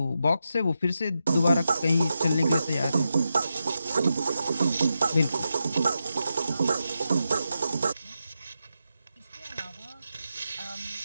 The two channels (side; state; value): both; inverted; correlation -0.87